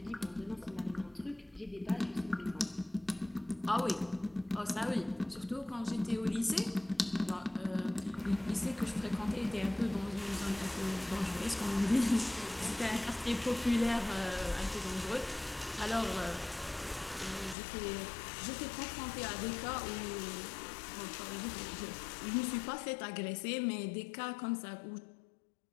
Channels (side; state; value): right; drops out; at 17.6 s